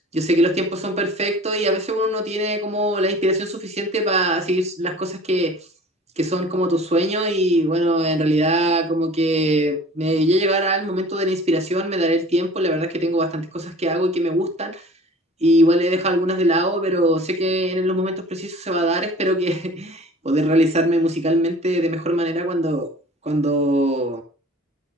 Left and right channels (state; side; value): normal; both; correlation 0.45